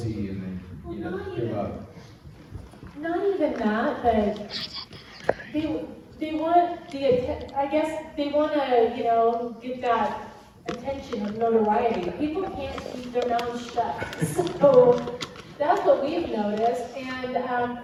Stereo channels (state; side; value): identical; both; correlation 1.00